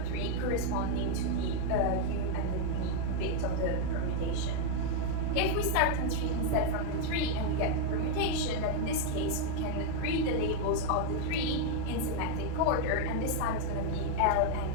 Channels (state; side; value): different; both; correlation 0.00